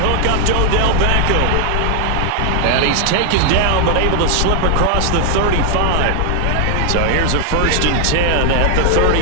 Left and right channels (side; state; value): both; different; correlation 0.00